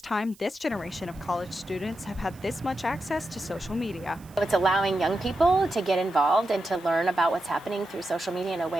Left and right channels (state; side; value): noise; right; hiss, 25 dB below the sound